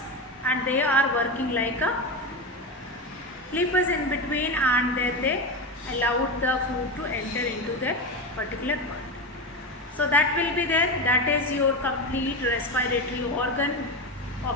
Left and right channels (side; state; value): both; normal; correlation 0.18